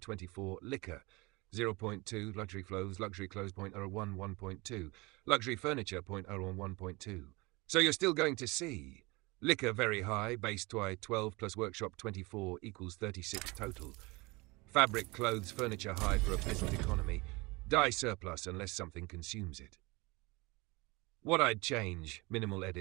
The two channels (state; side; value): quieter; left; 24.6 dB